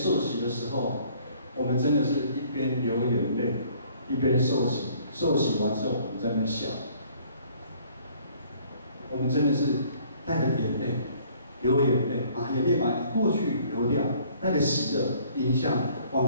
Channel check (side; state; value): both; inverted; correlation -0.58